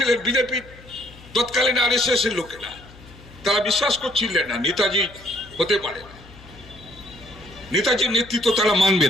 বিজেপি তৎকালীন আরএসএস এর লোকেরা। তারা বিশ্বাস করছিলেন না নেতাজি হতে পারে না, নেতাজির নেতৃত্ব তারা মানবে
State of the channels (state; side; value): noise; left; hum, 21 dB below the sound